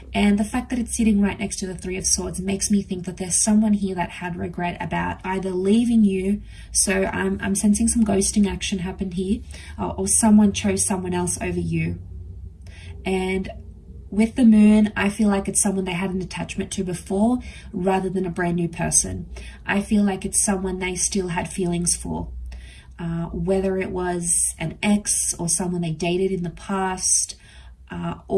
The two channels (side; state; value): both; identical; correlation 1.00